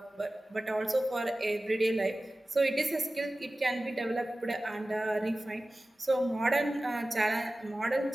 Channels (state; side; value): normal; both; correlation 0.96